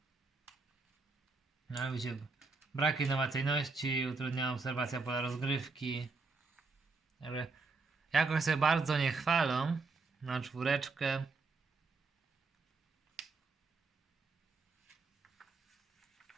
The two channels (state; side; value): quieter; left; 4.1 dB